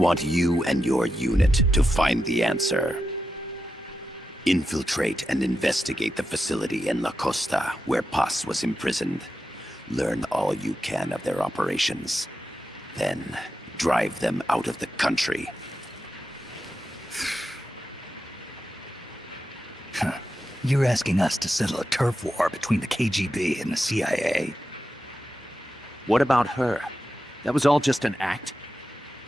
you and your unit to find the answer. Infiltrate and investigate the facility in La Costa where Paz was imprisoned. Learn all you can of their operations. Then, drive them out of the country. You're asking us to settle a turf war between the KGB and the CIA? What about her? That was all just an act?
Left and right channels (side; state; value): both; normal; correlation 0.89